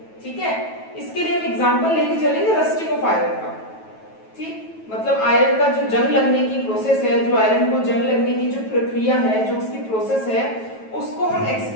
ठीक है, इसके लिए हम एग्जांपल लेके चलेंगे रस्टिंग ऑफ आयरन का। ठीक, मतलब आयरन का जो जंग लगने की प्रोसेस है, जो आयरन को जंग लगने की जो प्रक्रिया है, जो उसकी प्रोसेस है, उसको हम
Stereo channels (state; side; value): late; right; 9.2 ms